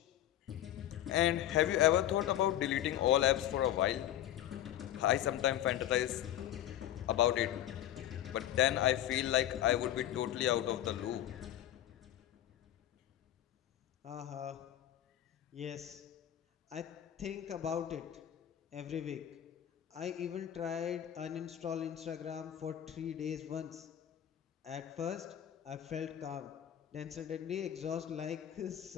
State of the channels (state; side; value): quieter; right; 11.9 dB